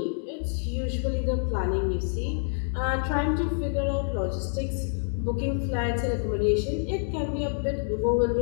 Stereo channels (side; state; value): right; silent; digital silence